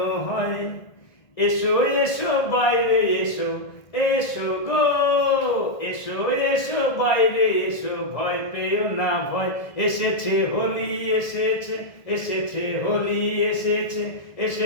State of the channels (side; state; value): right; late; 1.6 ms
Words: হয়। এসো এসো বাইরে এসো, এসো গো, এসো এসো বাইরে এসো, ভয় পেও না ভয়। এসেছে হোলি, এসেছে, এসেছে হোলি, এসেছে,